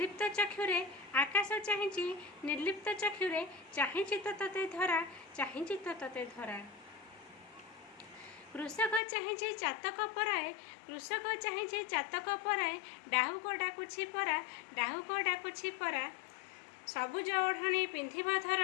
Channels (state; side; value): drops out; right; at 9.0 s